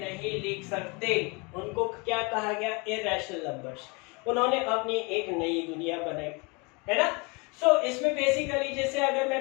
लिख सकते उनको क्या कहा गया, इरैशनल नंबर्स। उन्होंने अपनी एक नई दुनिया बनाई, है ना। इसमें बेसिकली जैसे अगर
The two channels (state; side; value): quieter; right; 29.5 dB